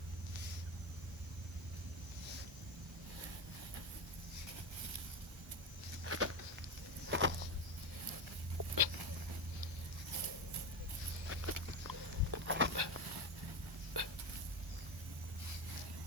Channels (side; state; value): both; normal; correlation 0.17